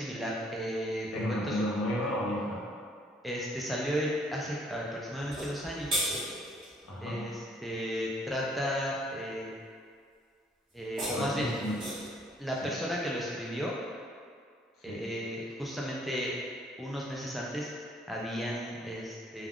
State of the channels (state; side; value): normal; both; correlation 0.63